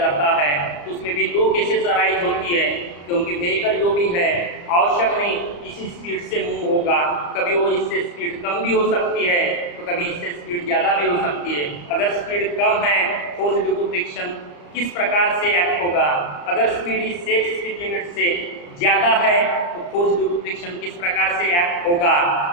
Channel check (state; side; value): late; right; 34 ms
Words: है तो उसमें भी दो केसेस अराइज होती है, क्योंकि व्हीकल जो भी है आवश्यक नहीं इसी स्पीड से मूव होगा, कभी वो इससे स्पीड कम भी हो सकती है तो कभी इससे स्पीड ज़्यादा भी हो सकती है। अगर स्पीड कम है फोर्स ड्यू टू फ्रिक्शन किस प्रकार से एक्ट होगा, अगर स्पीड इस सेफ स्पीड लिमिट से ज़्यादा है तो फोर्स ड्यू टू फ्रिक्शन किस प्रकार से एक्ट होगा